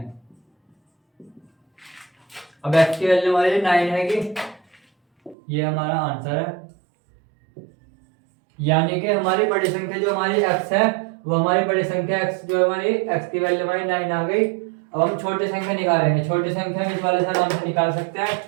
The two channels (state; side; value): drops out; left; at 5.4 s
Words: अब x की वैल्यू हमारी 9 है कि ये हमारा आंसर है, यानी कि हमारी बड़ी संख्या जो हमारी x है वो हमारी बड़ी संख्या x जो हमारी x की वैल्यू हमारी 9 आ गई। अब हम छोटी संख्या निकालेंगे, छोटी संख्या इस वाले से आराम से निकाल सकते हैं।